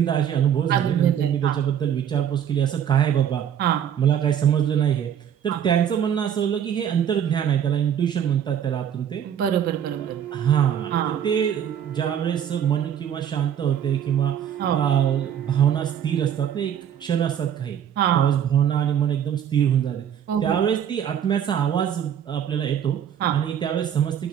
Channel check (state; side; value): quieter; left; 9.2 dB